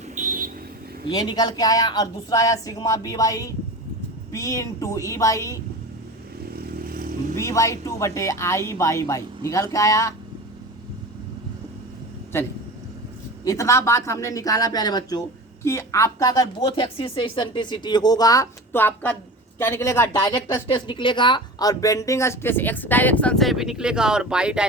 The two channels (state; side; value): normal; both; correlation 0.32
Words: ये निकल के आया। और दूसरा आया sigma B Y P into E Y B Y 2 बटे आई बाई बाई, निकल के आया। चलिए इतना बात हमने निकाला प्यारे बच्चों कि आपका अगर बोथ एक्सिस से इसेंट्रिसिटी होगा तो आपका क्या निकलेगा, डायरेक्ट स्ट्रेस निकलेगा, और बेंडिंग स्ट्रेस एक्स डायरेक्शन से भी निकलेगा और वाई